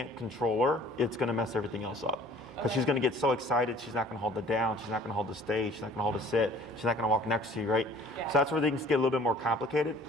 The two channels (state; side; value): normal; both; correlation 0.52